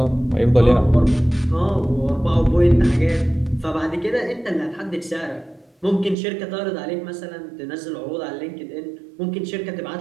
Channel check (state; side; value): drops out; left; at 6.2 s